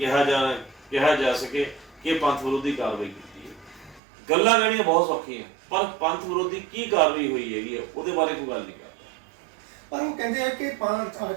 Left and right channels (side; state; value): left; drops out; at 4.0 s